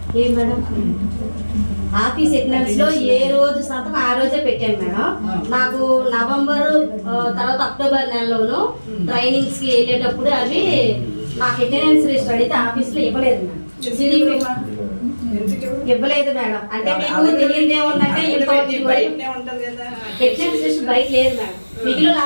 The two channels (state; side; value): inverted; both; correlation -1.00